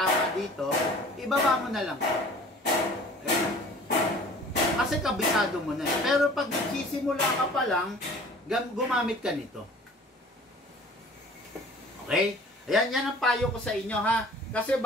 dito, ibaba mo na lang. Ayan. Kasi kabisado mo na. Pero pag nagsisimula ka pa lang, gumamit ka nito. Okay? Ayan, yan ang payo ko sa inyo, ha? Kasi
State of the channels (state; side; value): normal; both; correlation 0.47